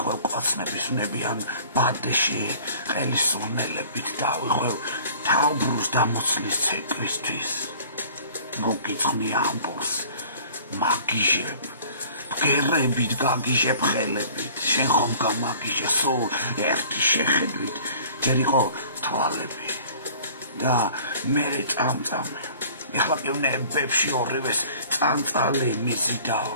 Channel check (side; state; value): both; inverted; correlation -0.49